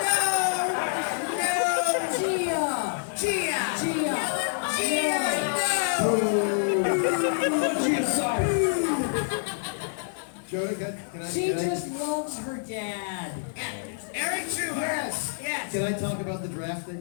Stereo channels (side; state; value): right; silent; digital silence